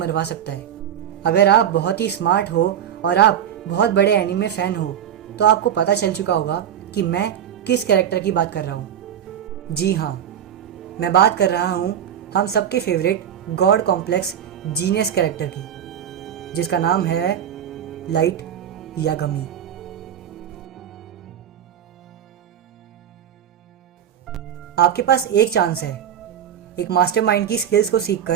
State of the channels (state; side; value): quieter; left; 9.5 dB